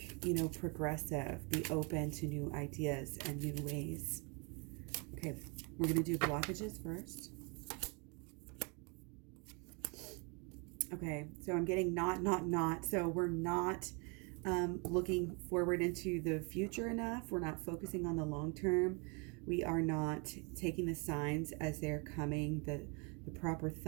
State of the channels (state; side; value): quieter; left; 32.8 dB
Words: progressive. Be open to new ideas and new ways. Okay, we're going to do blockages first. Okay, so I'm getting not. So we're not looking forward into the future enough. We're not focusing on the long term. We are not taking the signs as they're coming, the proper